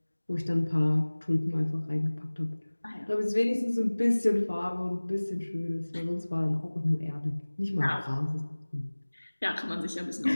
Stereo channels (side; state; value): both; inverted; correlation -1.00